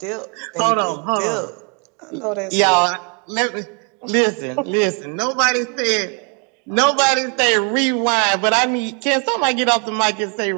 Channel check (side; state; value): left; quieter; 38.0 dB